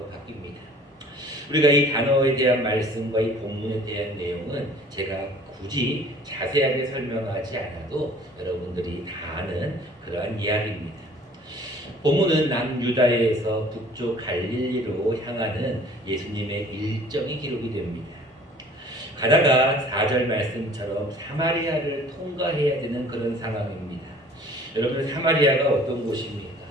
바뀝니다. 우리가 이 단어에 대한 말씀과 이 본문에 대한 내용은 제가 굳이 자세하게 설명하지 않아도 여러분들이 다 아는 그러한 이야기입니다. 본문은 남유다에서 북쪽 갈릴리로 향하는 예수님의 일정이 기록이 됩니다. 가다가 4절 말씀처럼 사마리아를 통과해야 되는 그런 상황입니다. 여러분, 사마리아가 어떤 곳입니까?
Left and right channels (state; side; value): normal; both; correlation 0.51